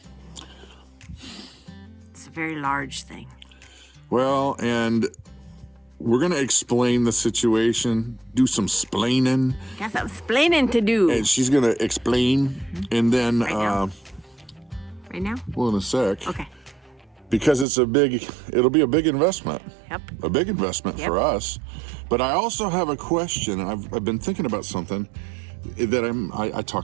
it's a very large thing. Well, and we're going to explain the situation, do some splaining. Got some splaining to do. And she's going to explain, and then, Right now? Well, in a sec. Okay. Because it'll be a big investment. Yep. A big investment for us. But I also have a question. I've been thinking about something that I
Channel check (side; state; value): left; drops out; at 17.7 s